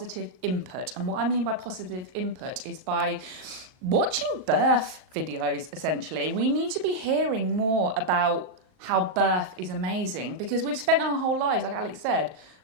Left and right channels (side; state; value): left; late; 38 ms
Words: input. And what I mean by positive input is by watching birth videos, essentially. We need to be hearing more about how birth is amazing, because we've spent our whole lives, like Alex said,